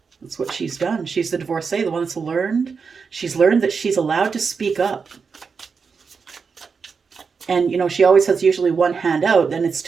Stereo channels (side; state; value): left; quieter; 5.4 dB